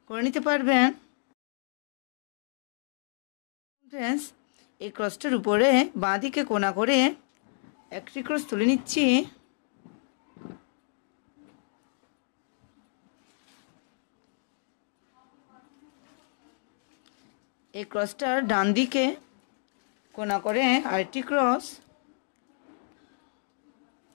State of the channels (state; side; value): silent; right; digital silence